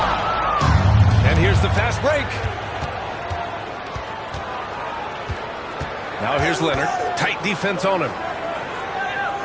And here's the fast break. Now here's Leonard. Tight defense on him.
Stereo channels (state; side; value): identical; both; correlation 1.00